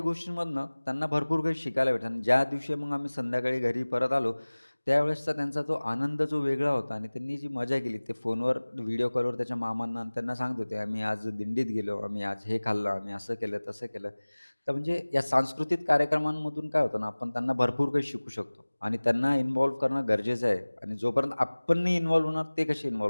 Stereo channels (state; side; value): inverted; both; correlation -1.00